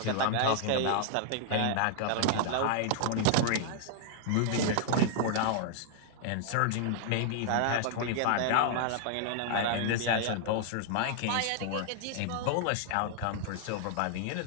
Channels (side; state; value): both; different; correlation -0.01